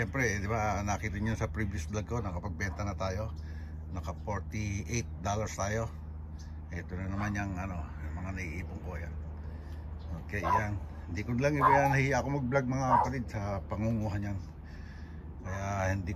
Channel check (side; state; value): both; identical; correlation 1.00